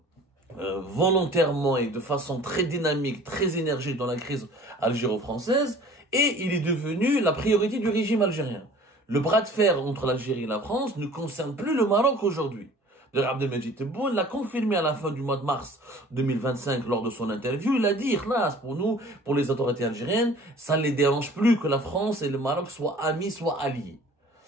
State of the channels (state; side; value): normal; both; correlation 0.48